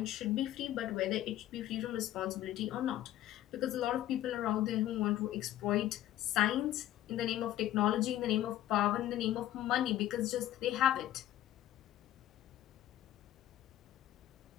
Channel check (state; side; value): quieter; right; 13.3 dB